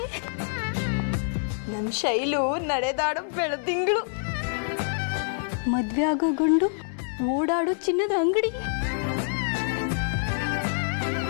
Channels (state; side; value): silent; right; digital silence